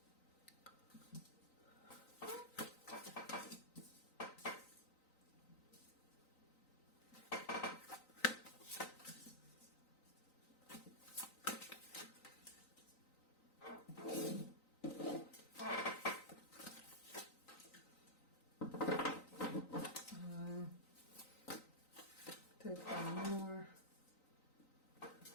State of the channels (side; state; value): right; late; 3.9 ms